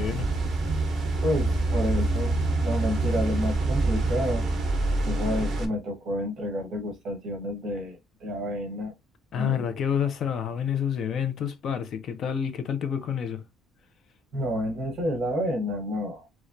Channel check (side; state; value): both; normal; correlation 0.72